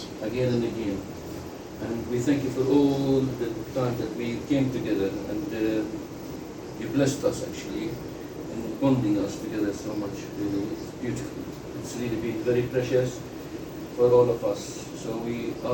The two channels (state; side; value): identical; both; correlation 1.00